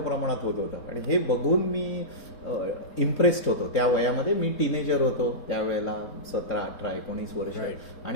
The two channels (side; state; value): right; late; 4.2 ms